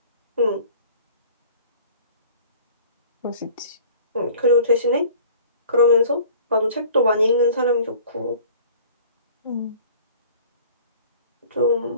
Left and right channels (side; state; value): both; inverted; correlation -0.47